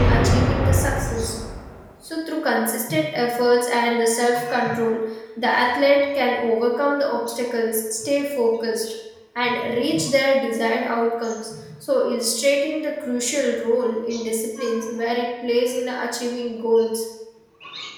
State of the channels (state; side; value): identical; both; correlation 1.00